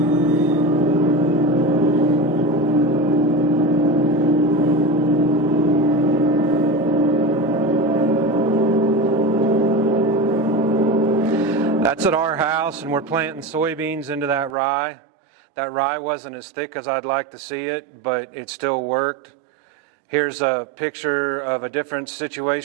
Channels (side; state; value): left; drops out; at 14.5 s